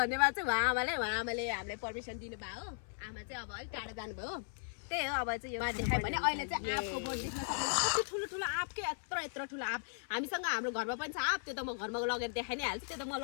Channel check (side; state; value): right; silent; 53 dB below the other